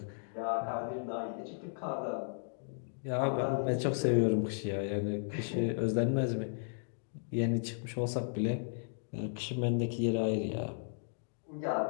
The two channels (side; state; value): right; silent; digital silence